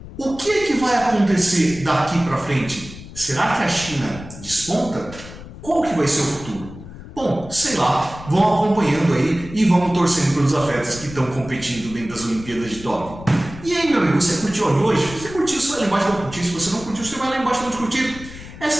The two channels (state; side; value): noise; left; rumble, 15 dB below the sound